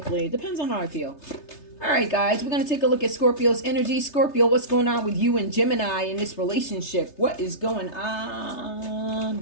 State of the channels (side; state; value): right; late; 3.3 ms